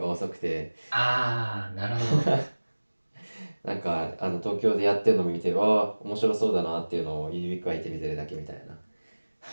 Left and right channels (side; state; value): both; inverted; correlation -1.00